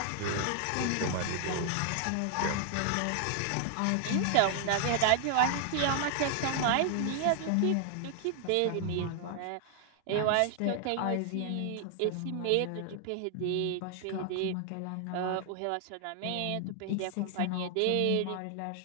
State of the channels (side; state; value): both; different; correlation 0.00